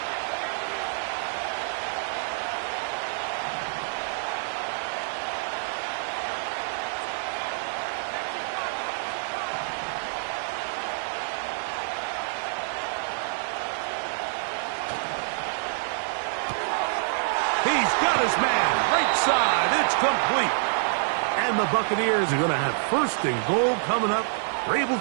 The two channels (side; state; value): left; silent; digital silence